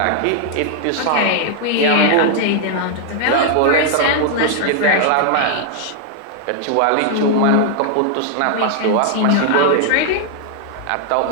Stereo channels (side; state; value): both; different; correlation 0.00